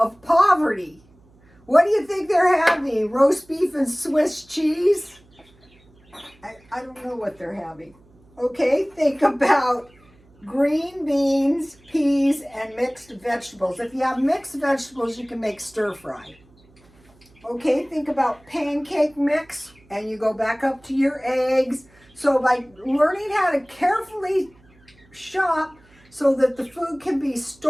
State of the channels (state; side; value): noise; right; hum, 30 dB below the sound